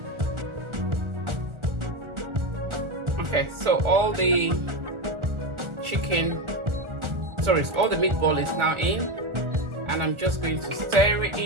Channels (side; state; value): left; late; 1.4 ms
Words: Okay, so all the all the meatball is now in, and I'm just going to stir it